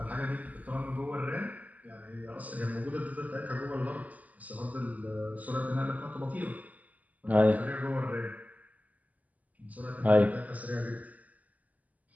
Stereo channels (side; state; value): left; late; 0.076 ms